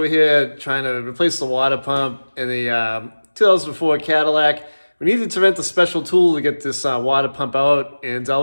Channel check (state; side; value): inverted; both; correlation -1.00